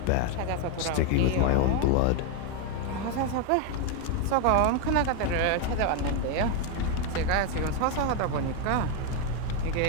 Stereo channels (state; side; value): different; both; correlation 0.02